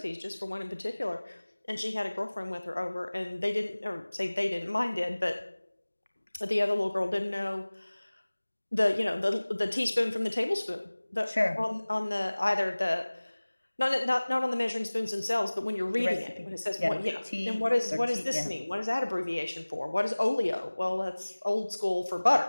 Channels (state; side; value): inverted; both; correlation -1.00